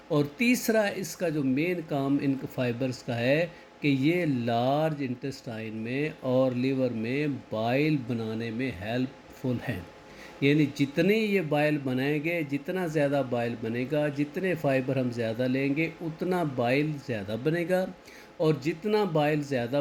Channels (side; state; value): both; identical; correlation 1.00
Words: और तीसरा, इसका जो मेन काम इन फाइबर्स का है कि ये लार्ज इंटेस्टाइन में और लीवर में बाइल बनाने में हेल्पफुल हैं। यानी जितने ये बाइल बनाएंगे, जितना ज़्यादा बाइल बनेगा, जितने फाइबर हम ज़्यादा लेंगे, उतना बाइल ज़्यादा बनेगा, और जितना बाइल ज़्यादा